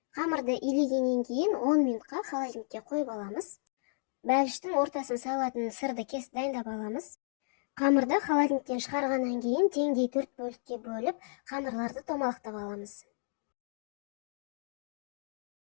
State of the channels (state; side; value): silent; right; digital silence